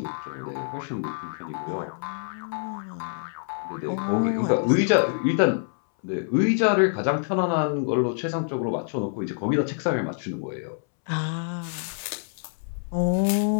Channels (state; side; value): silent; right; 61 dB below the other